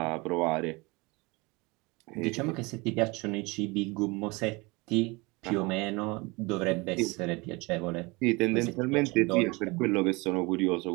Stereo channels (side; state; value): left; quieter; 25.6 dB